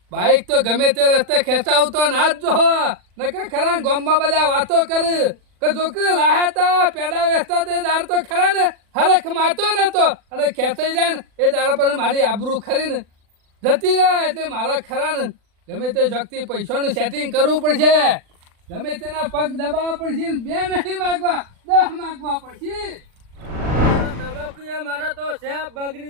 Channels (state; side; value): late; left; 40 ms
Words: બાઈક તો ગમે તે રસ્તે ખેંચાવતો ના જ જો નકર ખરા ગામમાં બધા વાતો કરે કે જો કે લાહેતા પેડા વેચતા તે દાર તો ખરા ને હરખ માતો નતો અને ખેંચાઈ જાય ને એ દાડા પર મારી આબરૂ ખરી ને જતી રહે. એટલે મારા ખરા ને ગમે તે શક્તિ પૈસાનું સેટિંગ કરવું પડશે. ગમે તેના પગ દબાવવા પડશે. 2 નહીં માગવા 10 માગવા પડશે. મારા તો શેપ